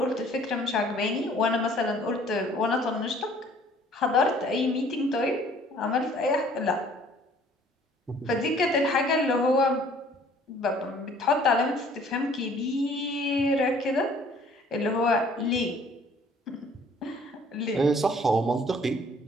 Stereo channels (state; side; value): normal; both; correlation 0.56